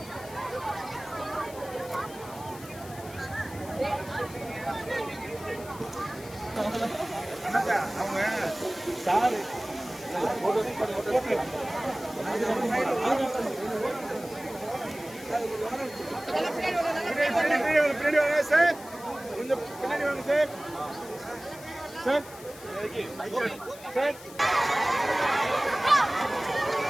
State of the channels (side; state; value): left; noise; hiss, 18 dB below the sound